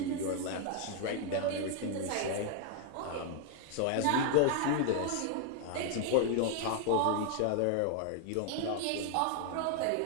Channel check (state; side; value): different; both; correlation 0.00